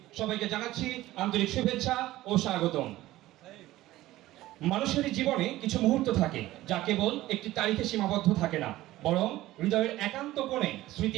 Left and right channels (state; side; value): quieter; left; 16.2 dB